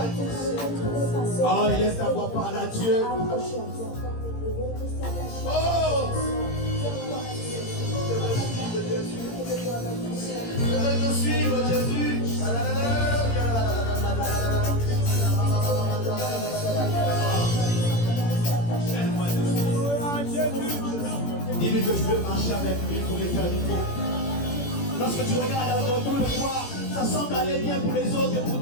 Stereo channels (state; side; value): late; right; 17 ms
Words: oh, laisse ta voix parler à Dieu. Oh, je veux te suivre, Jésus. Dis-lui que tu veux marcher avec lui pour l'éternité. Lorsque tu regardes autour de toi, ça semble aller bien pour les autres et pour